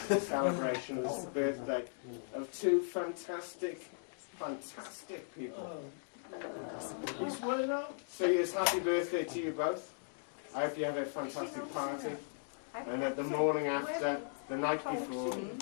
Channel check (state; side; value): silent; right; digital silence